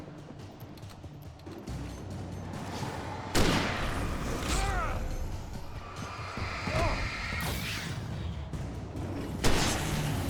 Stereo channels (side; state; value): both; identical; correlation 1.00